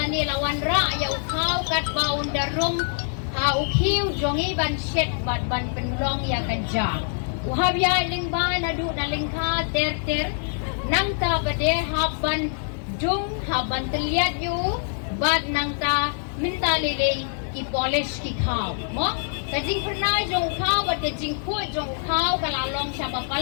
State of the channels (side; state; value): right; silent; 62 dB below the other